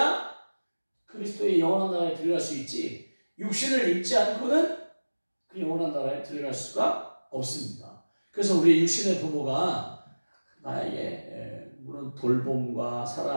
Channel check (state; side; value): inverted; both; correlation -1.00